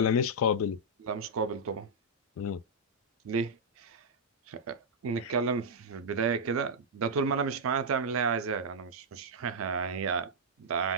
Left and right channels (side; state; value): both; normal; correlation -0.07